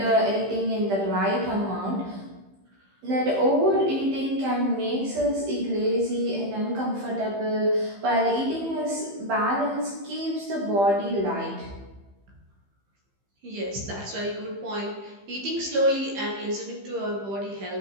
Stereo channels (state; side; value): late; left; 15 ms